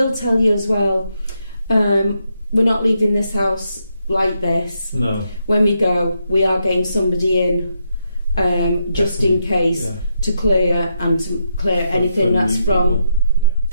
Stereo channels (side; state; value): both; inverted; correlation -0.80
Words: tell you as well, we're not leaving this house like this. No. When we go, we are getting somebody in, just in case, to clear anything that's